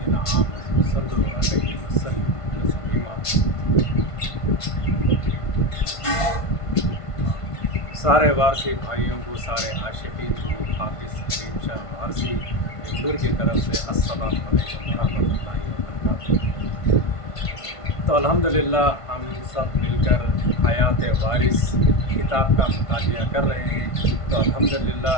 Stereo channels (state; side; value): late; right; 1.5 ms